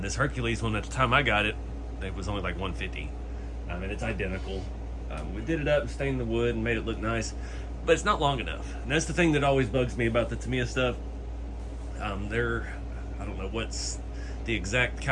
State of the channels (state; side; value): identical; both; correlation 1.00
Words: this Hercules one, at the time I got it, it was only like $150. And it's identical. We did it up and stained the wood and made it look nice, but it's not long enough. And that's the thing that always bugs me about the Tamiya stuff. I don't know what's the exact